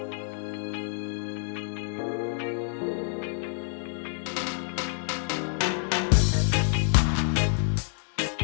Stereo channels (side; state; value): right; silent; digital silence